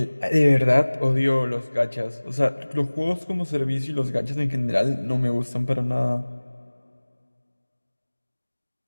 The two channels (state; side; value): inverted; both; correlation -1.00